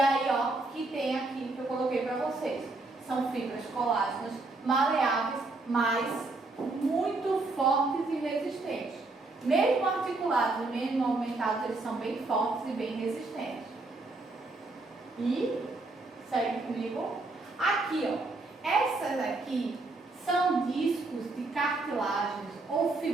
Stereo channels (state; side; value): quieter; left; 3.3 dB